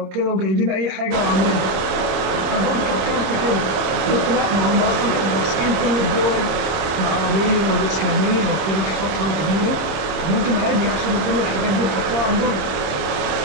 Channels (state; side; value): late; left; 27 ms